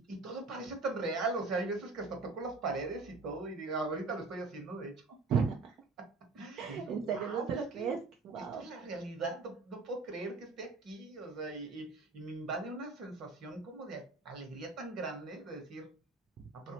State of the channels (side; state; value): left; quieter; 3.8 dB